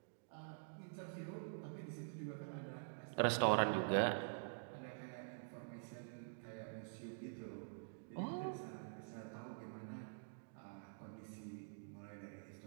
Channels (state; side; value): silent; left; digital silence